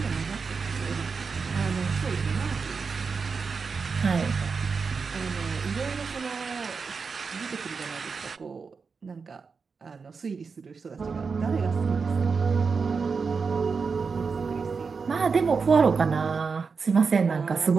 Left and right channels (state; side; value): quieter; left; 5.1 dB